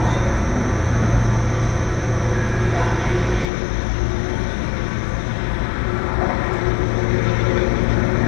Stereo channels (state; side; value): drops out; right; at 3.5 s